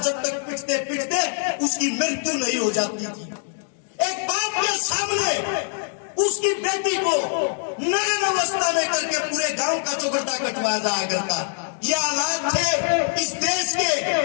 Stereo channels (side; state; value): right; silent; 63 dB below the other